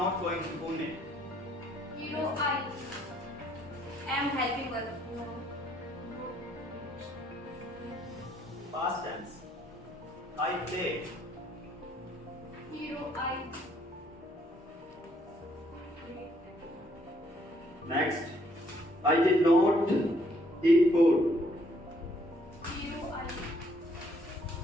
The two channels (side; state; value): both; normal; correlation 0.67